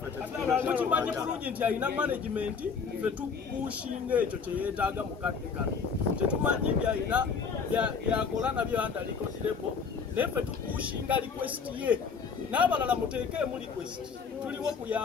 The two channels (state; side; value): quieter; right; 5.8 dB